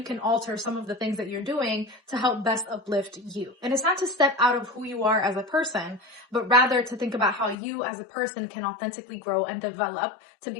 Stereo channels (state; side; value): drops out; right; at 7.6 s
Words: can alter some of the things that you're doing to help best uplift you? And it's not to step out of who you are as a person, but rather to think about how you as a person can authentically grow and develop to